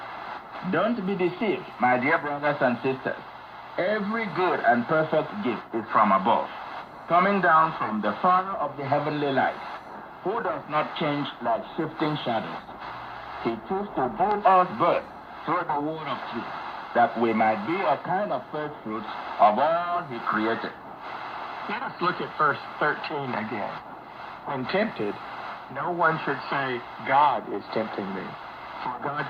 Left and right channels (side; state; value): both; identical; correlation 1.00